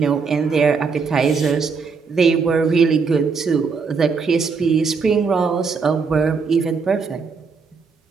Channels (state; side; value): quieter; left; 5.2 dB